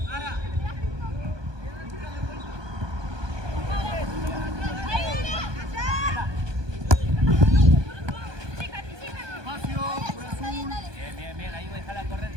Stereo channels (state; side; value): late; left; 1.2 ms